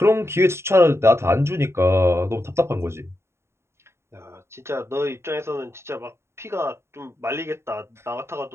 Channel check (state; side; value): late; left; 0.13 ms